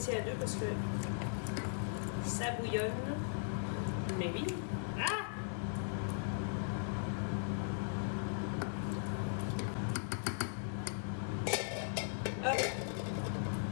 à 2 parce que ça bouillonne. Mais oui. Ah! Hop.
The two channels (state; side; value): silent; right; digital silence